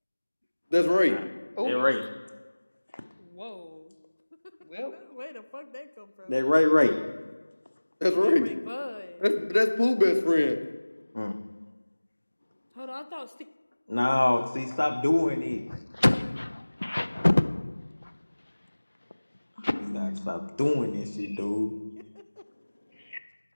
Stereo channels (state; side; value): inverted; both; correlation -1.00